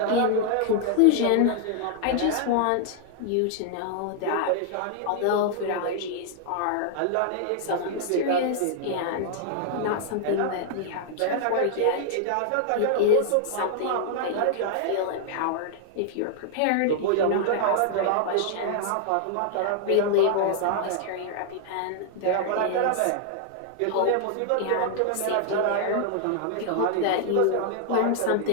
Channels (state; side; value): different; both; correlation 0.00